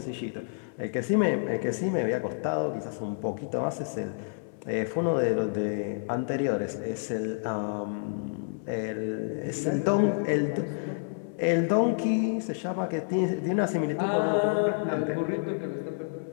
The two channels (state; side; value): silent; right; 59 dB below the other